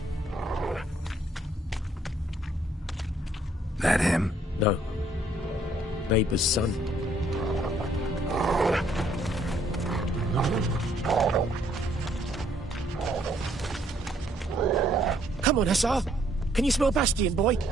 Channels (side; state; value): both; normal; correlation 0.67